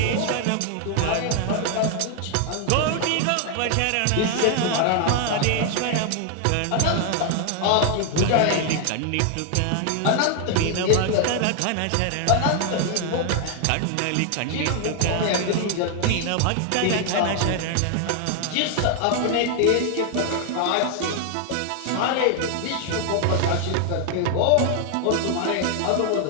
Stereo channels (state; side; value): different; both; correlation 0.00